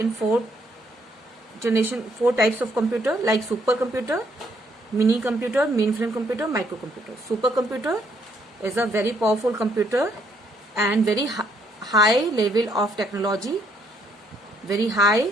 four types of computer like supercomputer, mini computer, mainframe computer, microcomputer. Supercomputer is a very powerful computer and very high level of technology, very high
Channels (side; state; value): both; normal; correlation 0.69